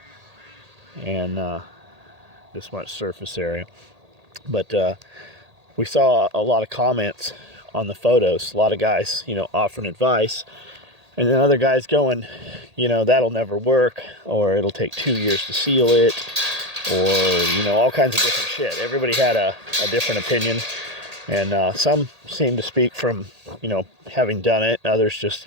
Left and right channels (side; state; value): left; late; 1.8 ms